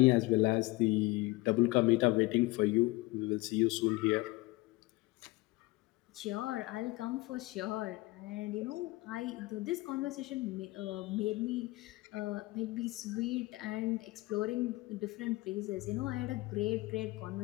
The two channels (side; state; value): right; quieter; 21.6 dB